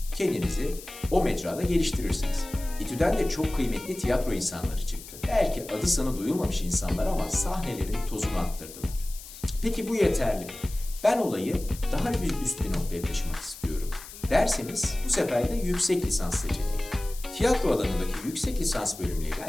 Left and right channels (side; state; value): left; noise; hiss, 15 dB below the sound